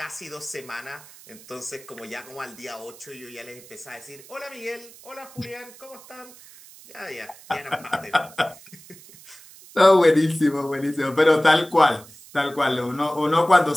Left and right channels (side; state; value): right; noise; hiss, 21 dB below the sound